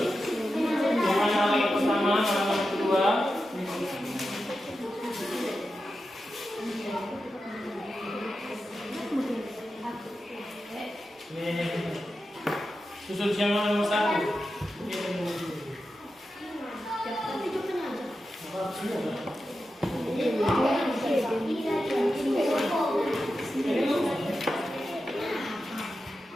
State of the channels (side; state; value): both; normal; correlation 0.90